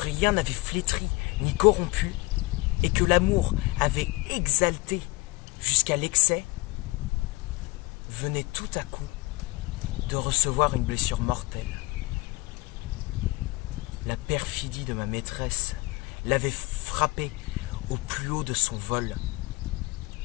n'avait flétrie ni corrompu et que l'amour avait exalté jusqu'à l'excès, venait tout à coup de recevoir une blessure mortelle. La perfidie de ma maîtresse l'avait frappée au plus haut de son vol.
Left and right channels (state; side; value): quieter; right; 23.1 dB